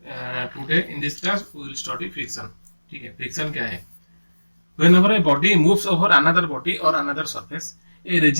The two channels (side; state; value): both; inverted; correlation -1.00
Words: today in this class we will study friction. ठीक है, friction क्या है? Whenever a body moves over another body or another surface, a